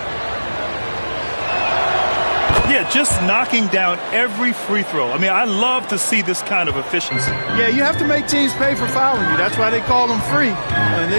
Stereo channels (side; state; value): both; inverted; correlation -1.00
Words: Yeah, just knocking down every free throw. I mean, I love to see this kind of efficiency. Yeah, you have to make teams pay for fouling you. That's why they call them free. And